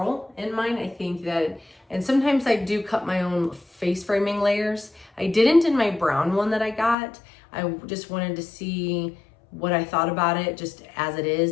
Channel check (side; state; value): right; drops out; at 7.0 s